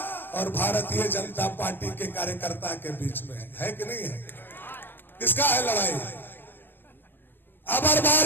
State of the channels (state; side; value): late; right; 0.096 ms